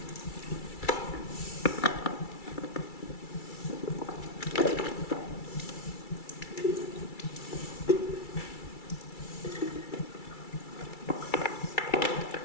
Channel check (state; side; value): late; right; 2.3 ms